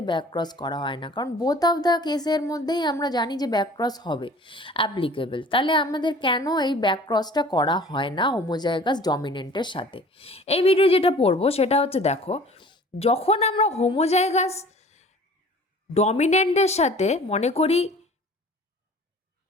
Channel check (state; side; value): normal; both; correlation 0.47